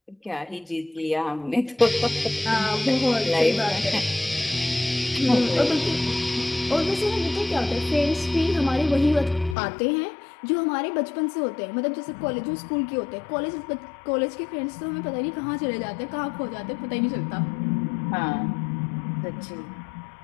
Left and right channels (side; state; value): right; drops out; at 9.6 s